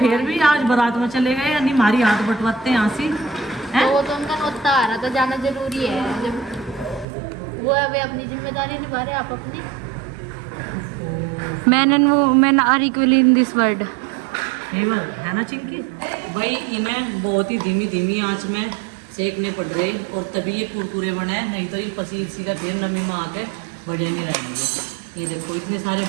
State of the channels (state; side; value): drops out; left; at 7.1 s